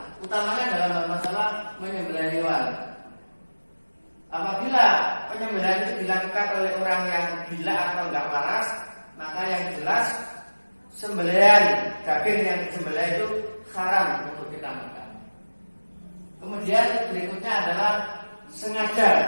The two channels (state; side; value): inverted; both; correlation -1.00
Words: utamanya dalam masalah menyembelih hewan. Apabila penyembelihan itu dilakukan oleh orang yang gila atau enggak waras, maka yang jelas sembelihan daging yang disembelih itu haram untuk kita makan. Kemudian berikutnya adalah